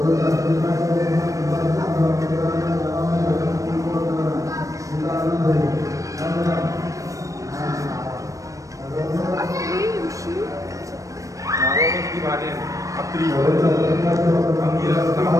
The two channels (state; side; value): late; left; 0.16 ms